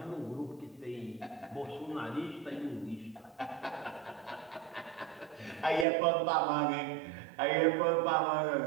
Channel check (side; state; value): left; drops out; at 5.9 s